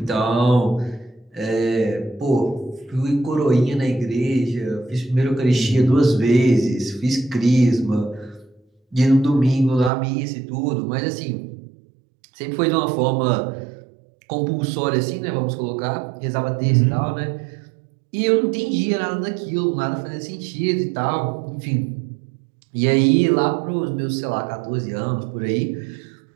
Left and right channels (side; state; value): left; drops out; at 9.9 s